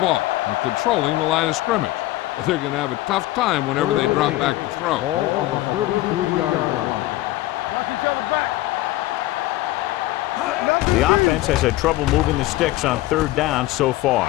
and controlling the line of scrimmage. They're going to have a tough time whenever they drop back to throw. Ball on the 33-yard line. The offense has had trouble moving the sticks on third down so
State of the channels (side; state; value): right; quieter; 17.1 dB